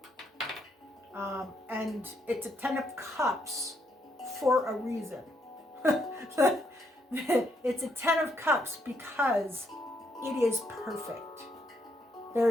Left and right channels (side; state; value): both; normal; correlation 0.75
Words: And it's a 10 of Cups for a reason. It's a 10 of Cups because it is perfect.